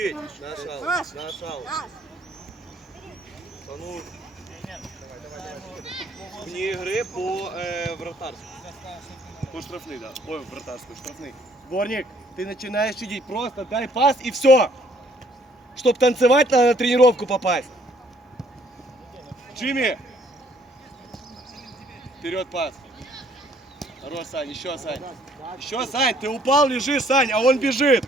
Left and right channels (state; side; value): normal; both; correlation 0.63